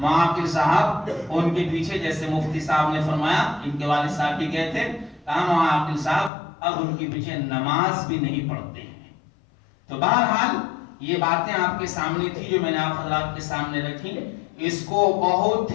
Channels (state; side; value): drops out; right; at 6.3 s